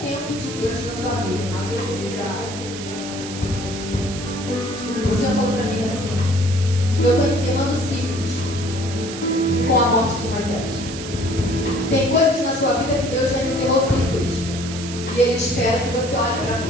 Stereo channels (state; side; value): noise; right; hiss, 10 dB below the sound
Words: de Deus na sua vida. O Senhor falou para mim assim: eu estou encerrando ciclos com a morte de Moisés. Tem coisas na sua vida que Deus já encerrou ciclos. E Ele espera que você olhe para